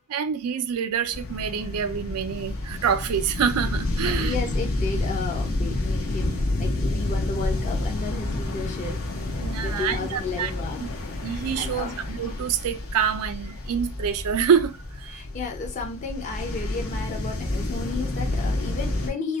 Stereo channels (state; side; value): normal; both; correlation 0.42